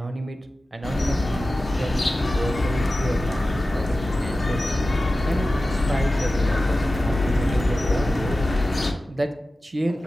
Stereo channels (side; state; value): both; normal; correlation 0.95